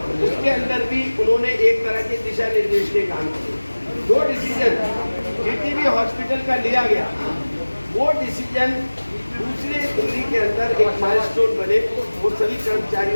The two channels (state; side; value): inverted; both; correlation -1.00